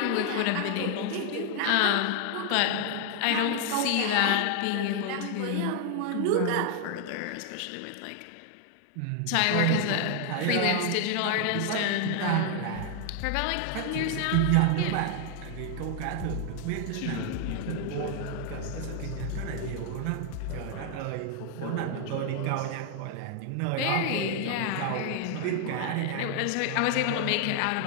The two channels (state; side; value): different; both; correlation 0.00